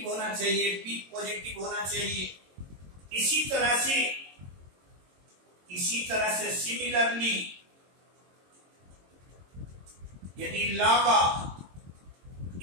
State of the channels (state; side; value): late; left; 22 ms